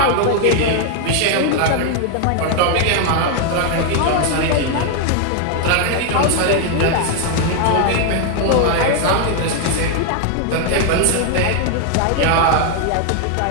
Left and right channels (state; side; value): different; both; correlation 0.00